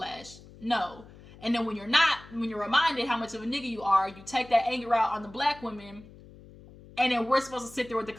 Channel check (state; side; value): noise; left; hum, 20 dB below the sound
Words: no. And then when you're reminded how much of a nigga you are, you take that anger out on the black women, and then we're supposed to sit there with the